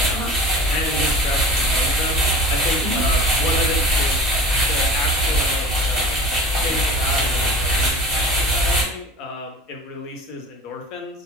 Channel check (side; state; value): both; normal; correlation 0.39